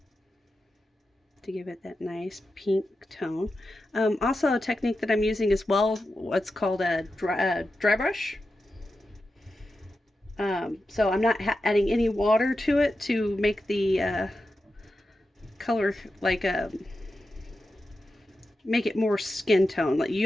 to give it that nice pink tone. Also, a technique that I'm using as well, what's called a dry brush. So I'm not adding any water to it to make the color like make it more skin tone. Like,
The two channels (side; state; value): both; normal; correlation 0.90